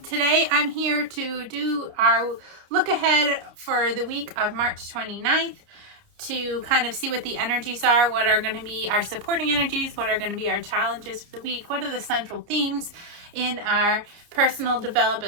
Today I'm here to do our look ahead for the week of March 29th to kind of see what the energies are, what are going to be our supporting energies, what are going to be our challenges for the week, what are the central themes in our personal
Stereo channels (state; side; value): late; left; 29 ms